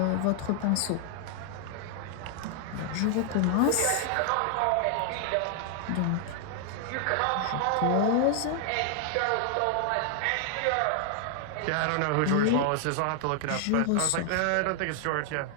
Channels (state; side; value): different; both; correlation 0.00